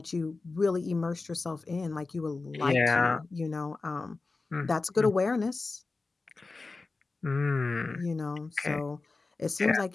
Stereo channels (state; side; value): quieter; right; 3.7 dB